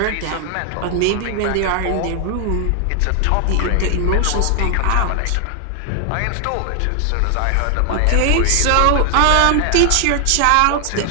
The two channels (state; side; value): different; both; correlation 0.00